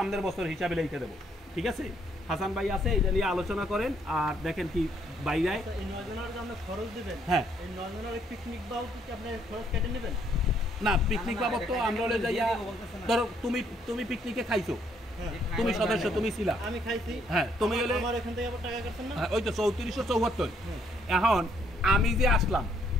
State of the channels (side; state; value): both; normal; correlation 0.69